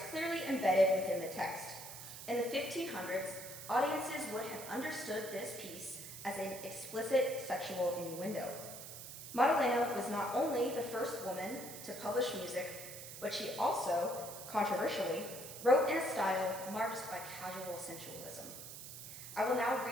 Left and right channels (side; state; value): right; noise; hiss, 11 dB below the sound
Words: clearly embedded within the text. In the 1500s, audiences would have understood this piece as an explicit sexual innuendo. Maddalena was not only the first woman to publish music, but she also, controversially, wrote in a style marked by casual sensualism. I will now